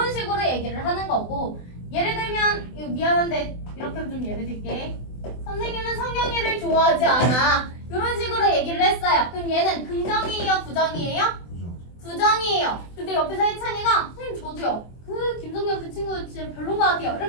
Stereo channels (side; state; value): right; late; 24 ms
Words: 식으로 얘기를 하는 거고, 예를 들면 이거 미안한데 이렇게 좀 예를 들게. 선생님은 성경이를 좋아하지 않아. 이런 식으로 얘기를 했어요. 그럼 얘는 긍정이에요? 부정이에요? 부정이에요. 근데 옆에서 혜찬이가 선생님 저도요. 그 김성경 그 친구 진짜 별론 것 같아요.